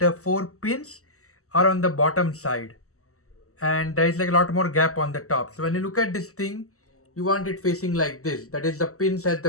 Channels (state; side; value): late; right; 0.65 ms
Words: 4 pins are on the bottom side, and there is like a lot more gap on the top. So when you look at this thing, you want it facing like this. That is the pins at